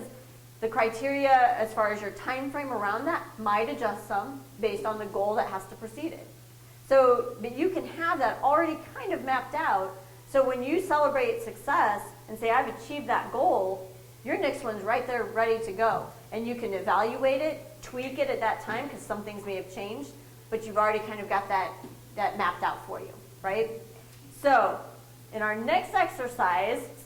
the criteria as far as your time frame around that might adjust some based on the goal that has to precede it. So, but you can have that already kind of mapped out. So when you celebrate success and say, I've achieved that goal, your next one's right there ready to go. And you can evaluate it, tweak it at that time, because some things may have changed, but you've already kind of got that mapped out for you, right? So in our next exercise,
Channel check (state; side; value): identical; both; correlation 1.00